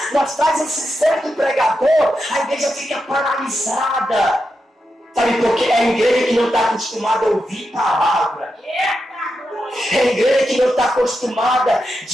nós traz esse certo pregador, a igreja fica paralisada. Sabe por quê? É a igreja que não está acostumada a ouvir palavra. É a igreja que não está acostumada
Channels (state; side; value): normal; both; correlation 0.87